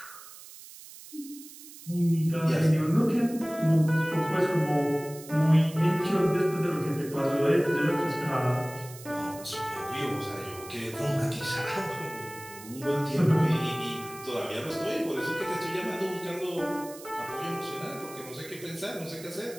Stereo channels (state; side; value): noise; right; hiss, 17 dB below the sound